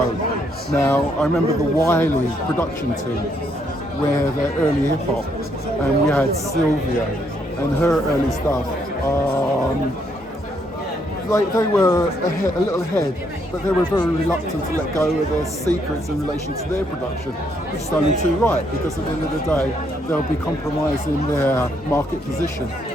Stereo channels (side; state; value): both; normal; correlation 0.73